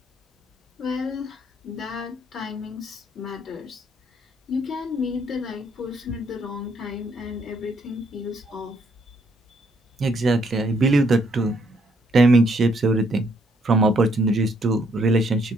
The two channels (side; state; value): both; normal; correlation 0.70